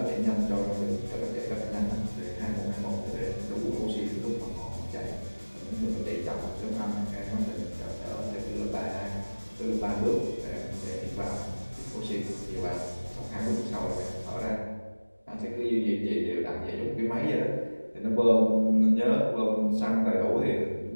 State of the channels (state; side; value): inverted; both; correlation -1.00